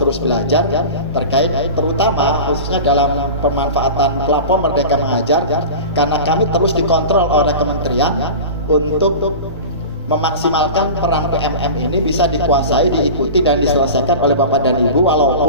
belajar terkait terutama khususnya dalam pemanfaatan platform Merdeka Mengajar, karena kami terus dikontrol oleh kementerian untuk memaksimalkan peran PMM ini bisa dikuasai, diikuti dan diselesaikan oleh Bapak dan Ibu,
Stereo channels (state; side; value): inverted; both; correlation -0.32